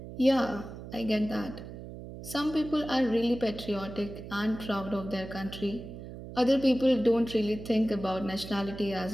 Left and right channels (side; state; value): right; noise; hum, 12 dB below the sound